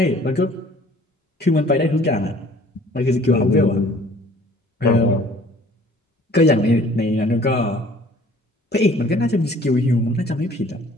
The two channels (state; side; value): normal; both; correlation 0.53